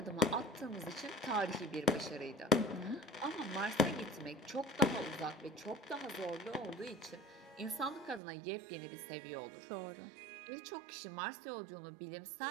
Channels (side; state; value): left; drops out; at 8.2 s